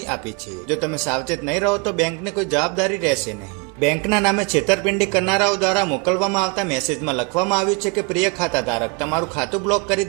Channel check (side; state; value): left; quieter; 30.8 dB